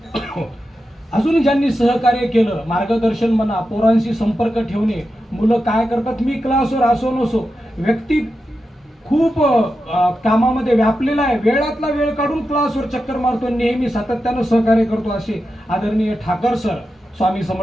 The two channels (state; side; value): normal; both; correlation 0.90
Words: अजून ज्यांनी सहकार्य केलं, मार्गदर्शन म्हणा, पोरांशी संपर्क ठेवणे, मुलं काय करतात, मी क्लासवर असो नसो, व्यक्ती खूप कामामध्ये व्यापलेला आहे, वेळातला वेळ काढून क्लासवर चक्कर मारतो, नेहमी सातत्यानं सहकार्य करतो, असे आदरणीय ठाकर सर स्वामी